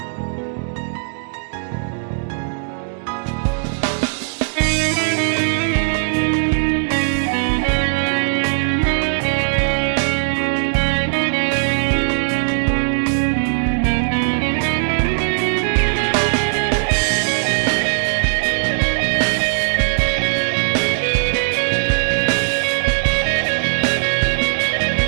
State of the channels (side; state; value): left; silent; digital silence